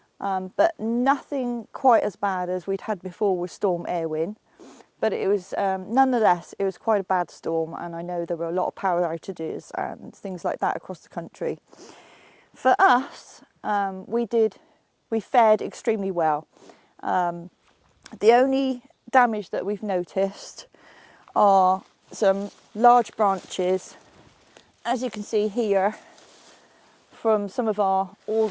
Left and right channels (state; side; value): identical; both; correlation 1.00